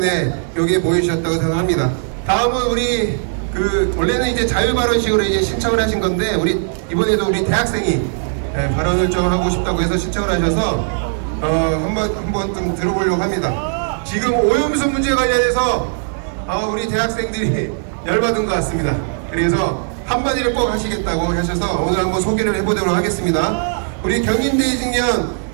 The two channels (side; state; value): left; silent; digital silence